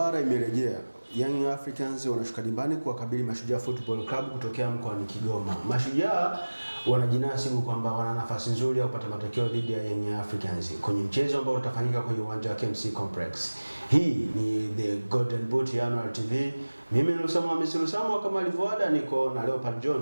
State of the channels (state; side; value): inverted; both; correlation -1.00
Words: imerejea. Young Africans wanashuka dimbani kuwakabili Mashujaa Football Club kutokea mkoani Kigoma. Mashujaa wanajinasibu kwamba wana nafasi nzuri ya kupata matokeo dhidi ya Young Africans kwenye mchezo ambao utafanyika kwenye uwanja wa KMC Complex. Hii ni The Golden Boot ya Annual TV. Mimi ni Lusamo Hamisi Lusamo, kama alivyoada niko na Leopard